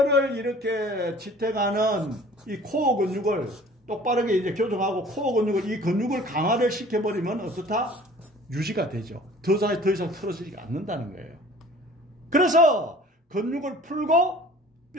이렇게 지탱하는 이 코어 근육을 똑바르게 이제 교정하고 코어 근육을 이 근육을 강화를 시켜버리면 어떻다? 유지가 되죠. 더 이상 틀어지지 않는다는 거예요. 그래서 근육을 풀고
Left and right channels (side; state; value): both; normal; correlation 0.48